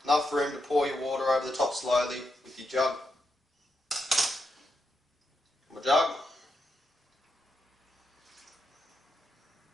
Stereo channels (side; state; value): both; normal; correlation 0.83